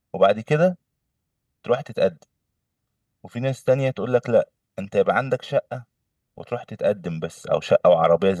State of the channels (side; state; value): both; identical; correlation 1.00